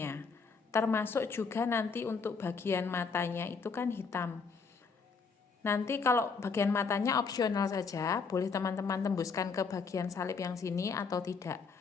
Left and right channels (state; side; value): quieter; right; 5.1 dB